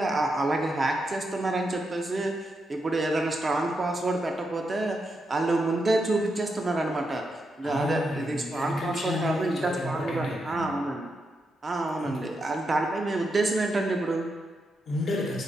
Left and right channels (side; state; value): both; normal; correlation 0.84